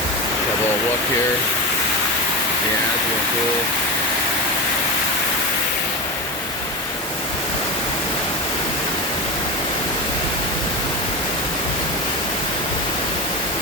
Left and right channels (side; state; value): both; normal; correlation 0.20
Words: Have a little look here. Yeah, it's really cool.